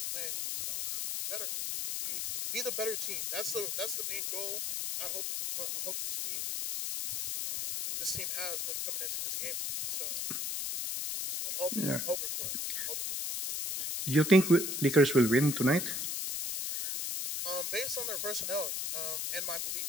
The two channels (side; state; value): left; noise; hiss, 2 dB below the sound